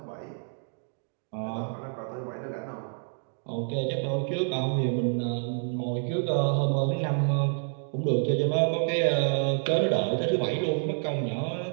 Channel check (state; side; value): silent; left; 55 dB below the other